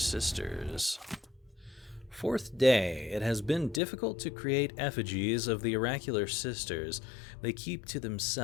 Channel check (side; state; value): right; drops out; at 3.8 s